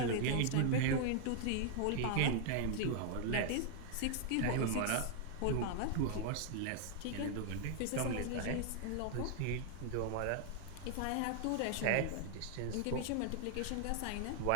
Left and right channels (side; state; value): both; different; correlation 0.00